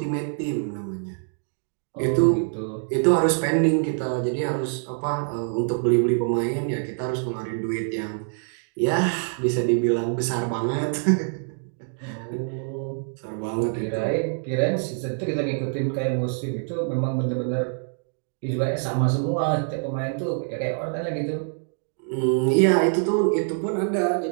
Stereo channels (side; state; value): left; silent; 62 dB below the other